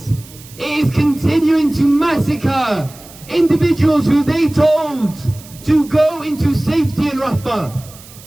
It is continuing to massacre individuals who they told to go into safety in Rafah.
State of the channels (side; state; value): right; noise; hiss, 20 dB below the sound